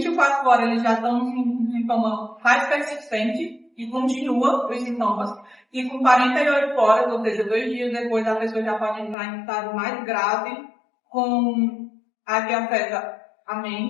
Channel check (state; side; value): drops out; right; at 9.2 s